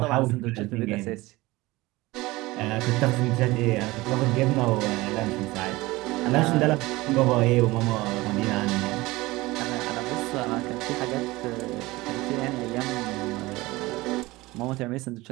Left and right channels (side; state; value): left; quieter; 20.4 dB